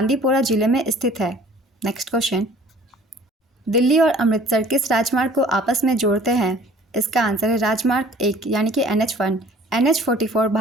जिले में स्थित है। नेक्स्ट क्वेश्चन, दिल्ली और अमृतसर किस राजमार्ग को आपस में जोड़ते हैं? इसका आंसर है राजमार्ग 1 यानी कि NH1। NH44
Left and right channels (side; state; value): both; normal; correlation 0.51